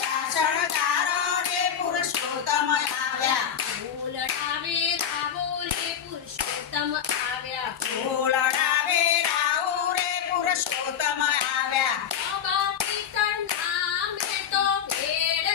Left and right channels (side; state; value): right; quieter; 8.5 dB